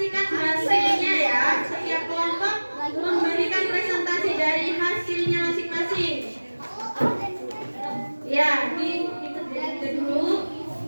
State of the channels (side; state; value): both; inverted; correlation -1.00